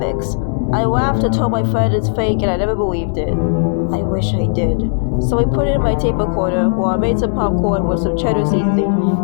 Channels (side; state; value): right; silent; digital silence